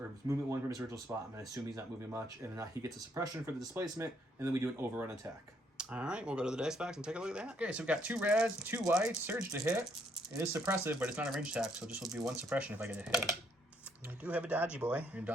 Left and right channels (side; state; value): both; normal; correlation 0.70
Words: movement 1 from his original spot. I'm going to assume he's not moving much. And then he gets a suppression for the displacement, and then we do an overrun attack. All right, we'll go to the dice box and take a look at that. Okay, so we've got 2 reds, 2 whites, surge to hit. It is suppressive, but it's not a range attack, so it just will be 1 suppression if I get a hit. I do have a dodgy boy. You're